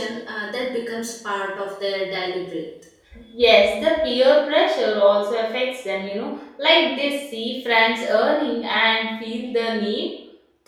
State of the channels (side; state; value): both; identical; correlation 1.00